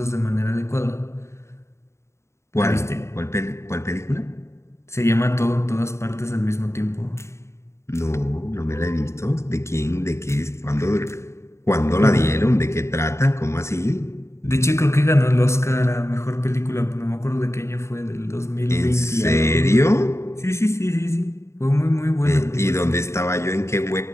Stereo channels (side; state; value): right; late; 0.13 ms